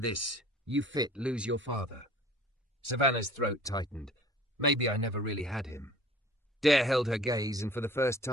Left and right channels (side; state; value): both; normal; correlation 0.48